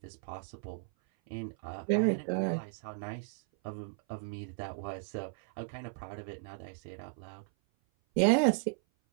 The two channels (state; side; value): silent; left; 54 dB below the other